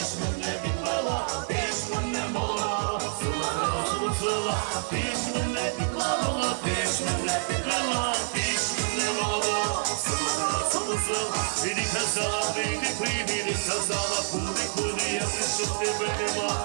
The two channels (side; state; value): left; silent; digital silence